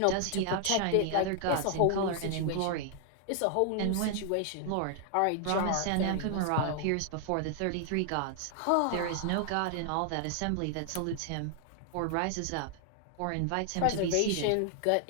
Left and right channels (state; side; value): different; both; correlation 0.00